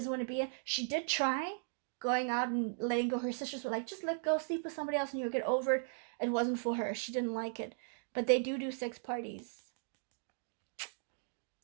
want to be. She did try going out and letting go. Her sisters were like, just let go, sleep with somebody else, and you'll get over it. It wasn't for her. She didn't like it. But they do sex parties.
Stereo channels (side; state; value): left; silent; digital silence